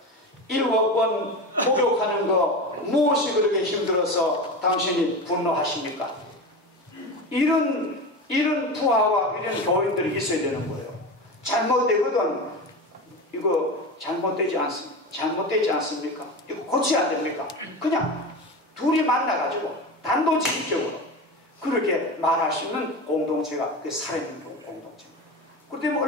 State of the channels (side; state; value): both; normal; correlation 0.25